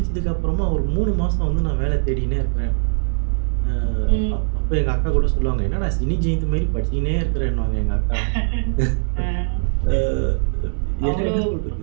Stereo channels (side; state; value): left; silent; 65 dB below the other